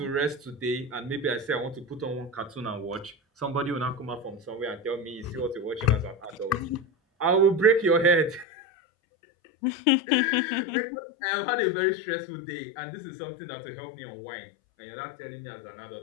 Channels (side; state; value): right; drops out; at 8.5 s